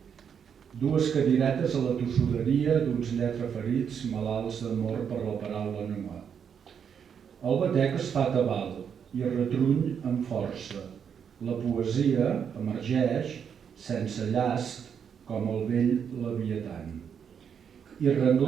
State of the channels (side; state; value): left; quieter; 7.5 dB